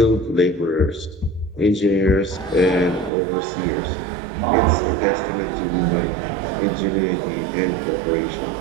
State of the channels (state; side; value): drops out; left; at 3.1 s